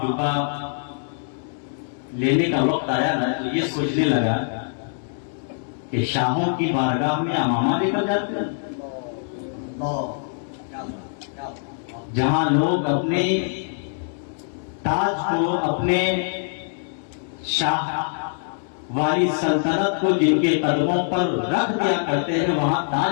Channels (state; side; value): silent; right; digital silence